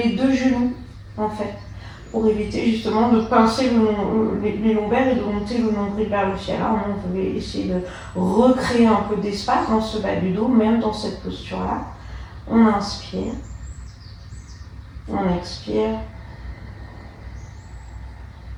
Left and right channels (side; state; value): both; identical; correlation 1.00